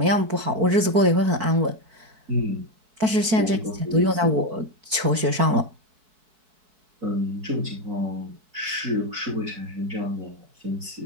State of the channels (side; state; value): left; late; 4.5 ms